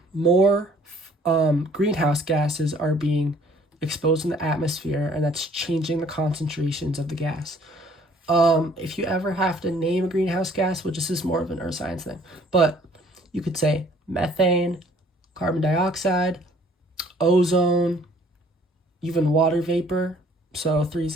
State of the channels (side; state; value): both; normal; correlation 0.58